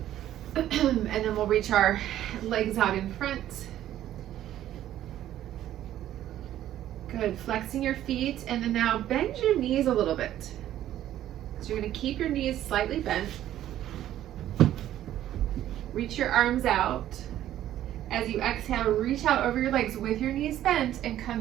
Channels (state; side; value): quieter; left; 12.4 dB